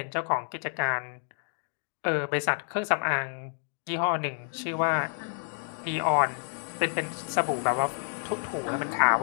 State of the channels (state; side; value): silent; right; 58 dB below the other